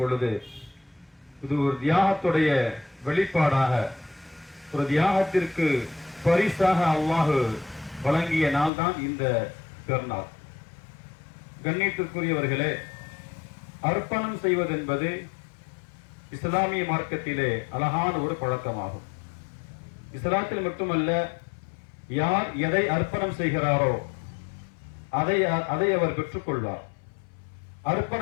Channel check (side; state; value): right; drops out; at 8.7 s